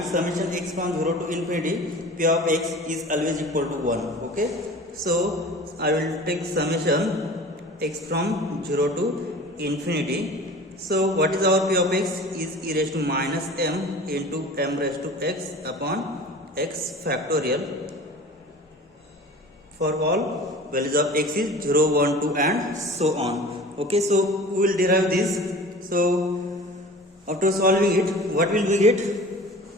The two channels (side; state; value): both; normal; correlation 0.40